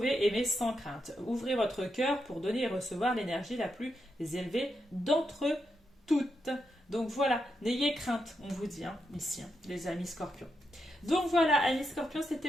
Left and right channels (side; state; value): both; normal; correlation 0.84